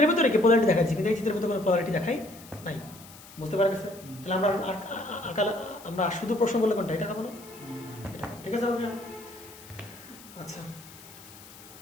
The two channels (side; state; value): left; noise; hiss, 19 dB below the sound